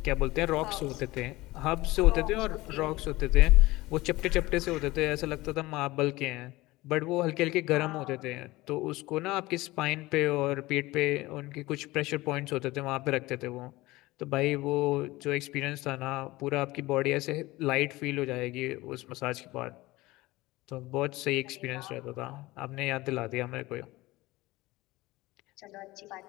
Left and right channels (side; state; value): right; quieter; 19.6 dB